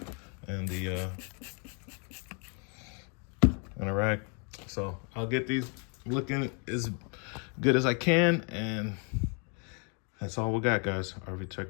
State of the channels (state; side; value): quieter; right; 37.4 dB